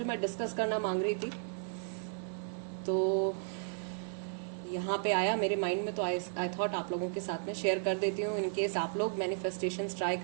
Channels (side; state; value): left; silent; 55 dB below the other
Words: मैं डिस्कस करना मांग रही थी, तो यहाँ पे आया मेरे माइंड में, तो आई थॉट आप लोगों के साथ में शेयर कर देती हूँ। इन केस आप लोग मैनिफेस्टेशंस ट्राई